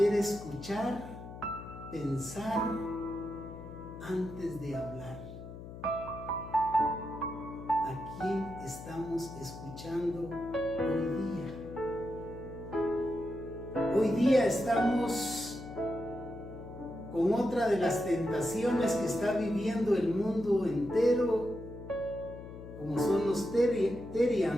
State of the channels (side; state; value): left; noise; hum, 12 dB below the sound